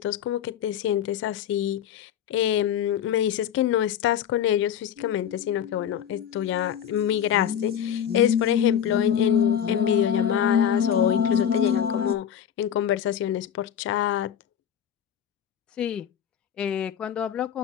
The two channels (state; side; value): quieter; right; 9.3 dB